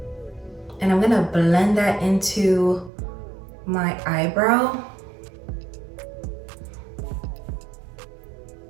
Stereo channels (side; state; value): left; drops out; at 2.9 s